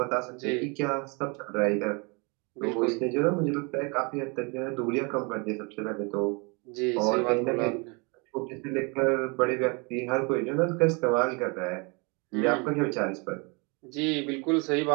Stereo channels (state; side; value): quieter; left; 31.0 dB